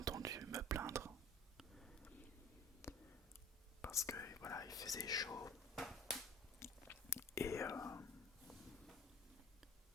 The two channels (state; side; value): normal; both; correlation 0.43